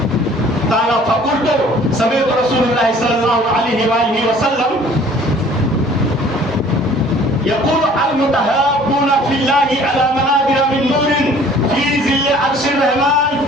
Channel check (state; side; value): normal; both; correlation 0.52